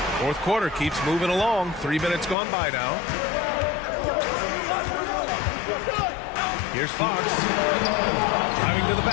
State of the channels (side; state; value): right; drops out; at 2.4 s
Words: Fourth quarter keeps moving along. 3 minutes gone by now. Here's Fox. Driving to the